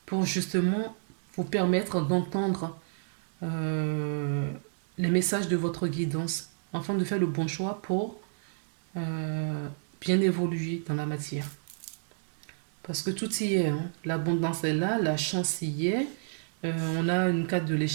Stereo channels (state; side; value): silent; left; digital silence